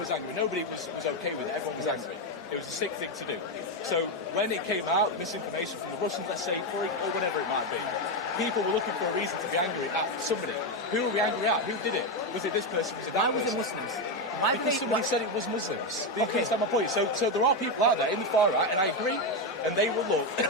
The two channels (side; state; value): both; normal; correlation 0.08